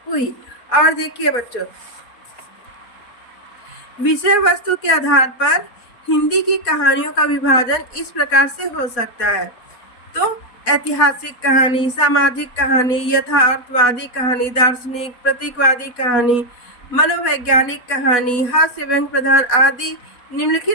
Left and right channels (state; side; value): late; right; 4.1 ms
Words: हुई। और देखिए बच्चों, विषय वस्तु के आधार पर हिंदी की कहानियों का विभाजन इस प्रकार से हो सकता है। तो ऐतिहासिक कहानी, सामाजिक कहानी, यथार्थवादी कहानी, दार्शनिक, प्रतीकवादी कहानी, मनोवैज्ञानिक कहानी, हास्य व्यंग प्रधान आदि